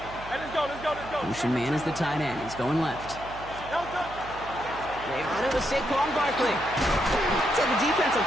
let's go. Motion man is the tight end. He's going left. They run it with Saquon Barkley. So the defense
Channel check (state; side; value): noise; right; hum, 15 dB below the sound